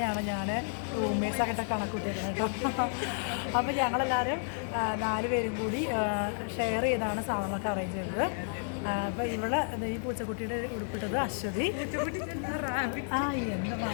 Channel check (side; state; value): right; silent; digital silence